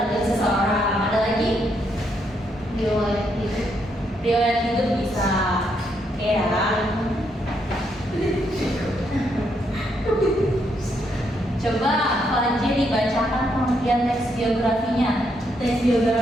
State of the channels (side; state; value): both; normal; correlation 0.76